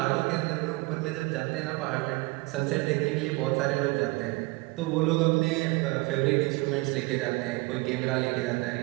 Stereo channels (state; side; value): quieter; left; 24.4 dB